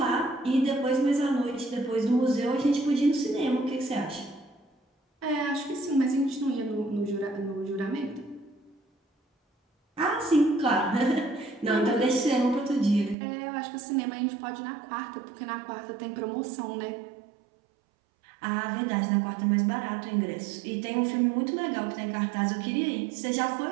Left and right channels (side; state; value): left; drops out; at 13.2 s